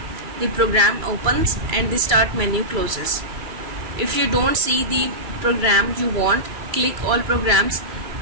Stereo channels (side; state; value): left; late; 2.3 ms